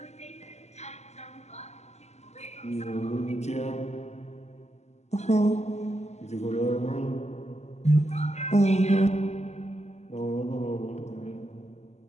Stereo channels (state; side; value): late; right; 0.33 ms